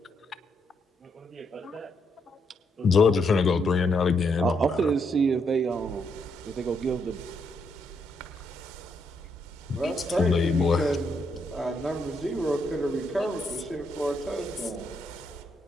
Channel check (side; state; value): both; normal; correlation 0.77